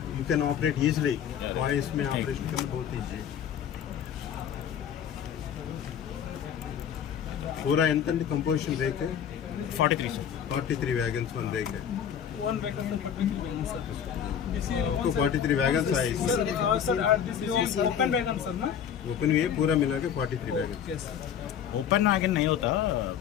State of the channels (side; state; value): right; quieter; 8.7 dB